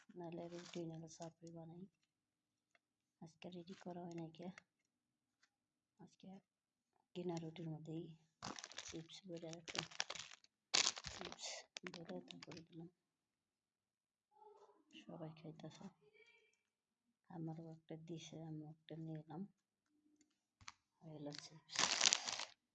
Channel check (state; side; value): identical; both; correlation 1.00